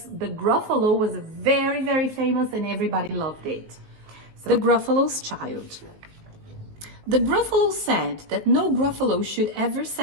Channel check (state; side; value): late; left; 19 ms